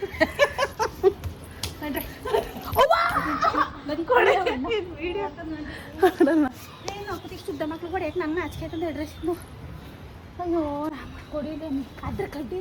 ಶುದ್ಧ ಮಕ್ಳು ಹೊಡೆಯಕ್ಕೆ ನಂಗೆ ನಾಚಿಕೆ ಆಯ್ತಂದು ಅಡ್ರೆಸ್. ಅಯ್ಯೋ ಕೊಡಿಲ್ಲ ಅದ್ರ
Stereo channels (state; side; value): identical; both; correlation 1.00